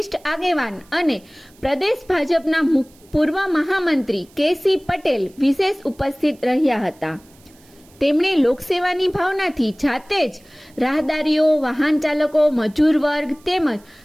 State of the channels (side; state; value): right; noise; hiss, 29 dB below the sound